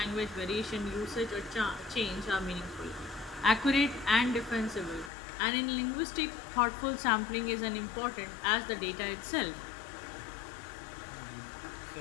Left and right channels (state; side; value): drops out; right; at 5.1 s